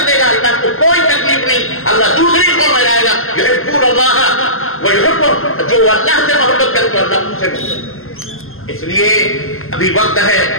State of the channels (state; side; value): late; right; 0.61 ms